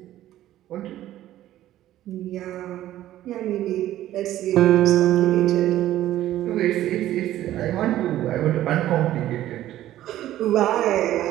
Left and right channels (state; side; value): quieter; left; 13.5 dB